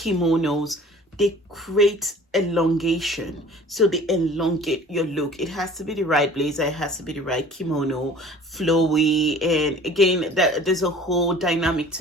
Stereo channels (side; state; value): both; normal; correlation 0.47